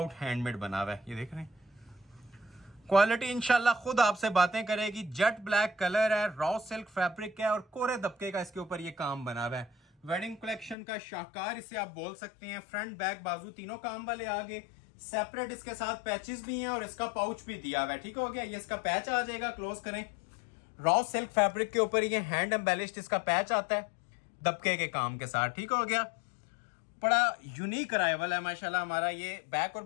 हैंडमेड बना हुआ है, ये देख रहे हैं। क्वालिटी इंशाल्लाह खुद आपसे बातें करेगी। जेट ब्लैक कलर है, रॉ सिल्क फैब्रिक है और कोरे दबके का इसके ऊपर ये काम बना हुआ है। वेडिंग कलेक्शन का शाहकार इसे आप बोल सकते हैं। फ्रंट बैक बाजू तीनों काम वाले आगे। सेपरेट इसके साथ पैचेस भी हैं और इसका पाउच भी दिया हुआ है। ठीक हो गया, ये इसका पैच आ जाएगा, क्लोज करें। रॉ सिल्क फैब्रिक के ऊपर ये हैंड एम्बेलिश्ड इसका पैच आता है दबके के काम के साथ। ठीक हो गया, बड़ा यूनिक अराइवल है माशाल्लाह हमारा। ये बैक और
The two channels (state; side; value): drops out; right; at 10.8 s